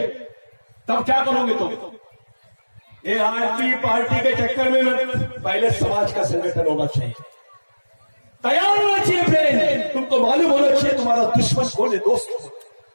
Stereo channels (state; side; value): inverted; both; correlation -1.00